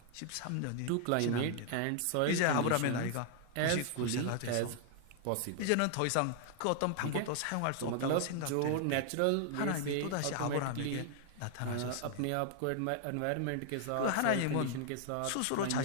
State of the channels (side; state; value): both; different; correlation 0.00